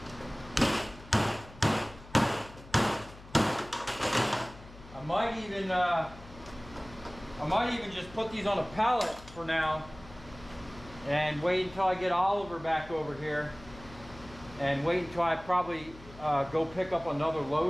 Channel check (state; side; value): noise; left; hum, 19 dB below the sound